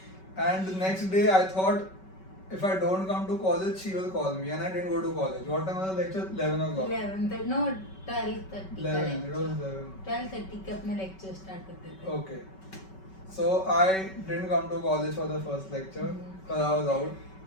And the next day I thought if I don't come to college she will call me, and I didn't go to college. What time was the lecture? 11 o'clock. 11, no, 12:30. 11. It was 11. 12:30 के अपने lecture start करते थे. Okay. So I didn't come to college for the first lecture because I was out.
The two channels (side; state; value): right; late; 5.3 ms